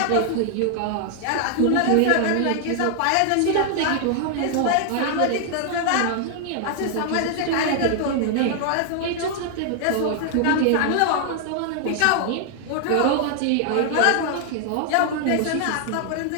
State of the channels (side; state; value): both; different; correlation 0.00